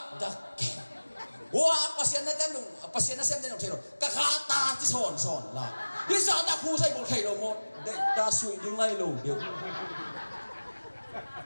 wah pasien na xem tên thầy rồi các ta chỉ sòn là bây giờ ta khu dây một thầy rồi một đây ta suy đứng ngay lù được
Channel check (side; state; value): both; inverted; correlation -1.00